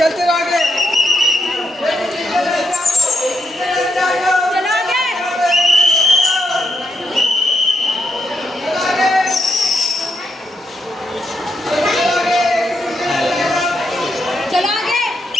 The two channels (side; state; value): both; normal; correlation 0.80